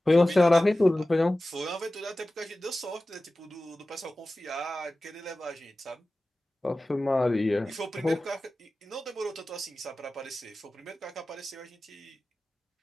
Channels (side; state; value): both; normal; correlation 0.96